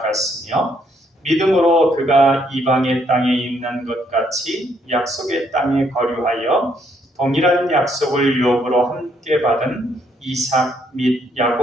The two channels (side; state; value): both; normal; correlation 0.71